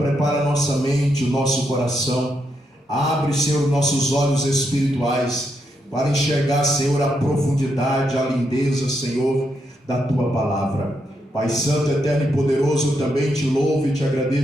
a nossa mente, o nosso coração, abre, Senhor, nossos olhos espirituais, para enxergar, Senhor, a profundidade, a lindeza, Senhor, da Tua palavra. Pai Santo, eterno e poderoso, eu também te louvo e te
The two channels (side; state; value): both; normal; correlation 0.81